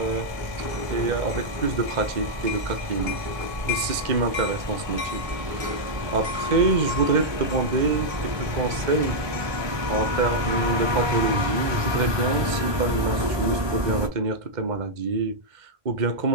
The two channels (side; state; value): left; late; 1.2 ms